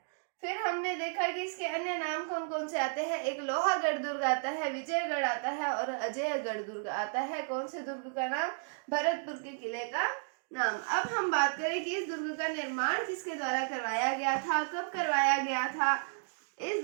फिर हमने देखा कि इसके अन्य नाम कौन कौन से आते हैं। एक लोहागढ़ दुर्ग आता है, विजयगढ़ आता है और अजयगढ़ दुर्ग आता है। कौन से दुर्ग का नाम, भरतपुर के किले का नाम। अब हम बात करें कि इस दुर्ग का निर्माण किसके द्वारा करवाया गया था, कब करवाया गया था, इस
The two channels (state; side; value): silent; left; digital silence